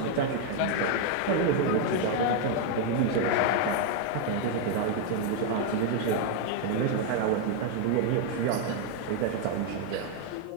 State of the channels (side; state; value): both; different; correlation 0.01